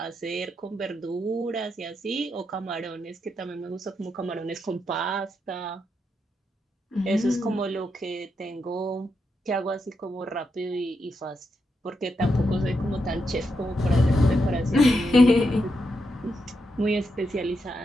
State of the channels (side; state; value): both; normal; correlation 0.83